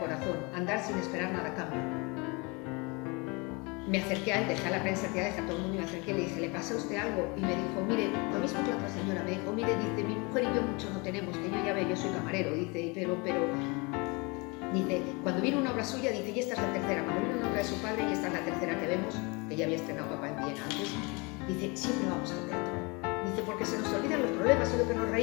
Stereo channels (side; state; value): right; quieter; 28.5 dB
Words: a andar sin esperar nada a cambio, me acerqué a él, dejé a la prensa tirada, dejé a todo el mundo y me acerqué y le dije, ¿le pasa a usted algo? Y me dijo, mire, lo mismo que la otra señora, me dijo, mire, dice, mi mujer y yo mucho no tenemos, que yo ya veo, yo soy camarero, dice, pero, dice, cuando viene una obra suya, dice, y esta es la tercera, cuando viene una obra de su padre, y esta es la tercera que vemos, que ya había estrenado papá en Viena antes, dice, siempre vamos al teatro. Dice, porque se nos olvidan los problemas y lo que nos